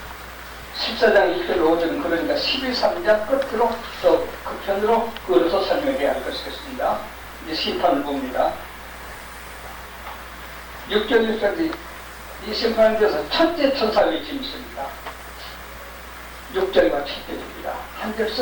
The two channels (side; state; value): both; identical; correlation 1.00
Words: 14장 1절 5절은 그러니까 12.3장 끝으로 또 끝편으로 그어서 설명해야 할 것이겠습니다. 이제 심판을 봅니다. 6절 6절이 이 심판에 대해서 첫째 천사 외침이 있습니다. 6절과 7절입니다. 한